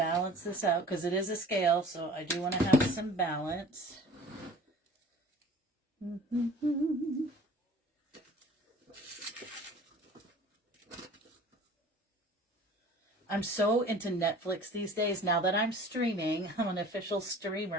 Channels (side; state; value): both; normal; correlation 0.46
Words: this out because it is a scale, so I do want to have some balance. I'm so into Netflix these days. Now that I'm streaming, I'm an official